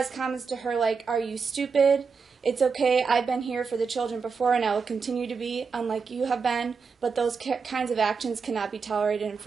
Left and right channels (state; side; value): quieter; left; 5.3 dB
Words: comments to her like, "Are you stupid? It's okay, I've been here for the children before and I will continue to be, unlike you have been, but those kinds of actions cannot be tolerated, and